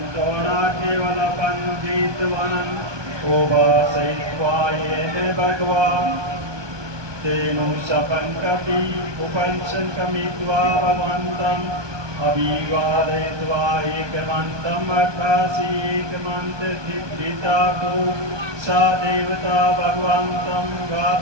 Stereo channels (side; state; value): left; late; 1.2 ms